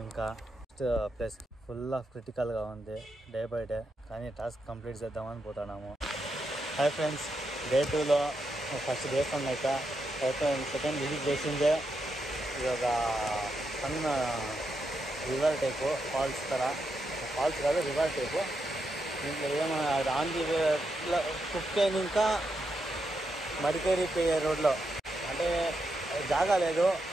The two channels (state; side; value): normal; both; correlation 0.83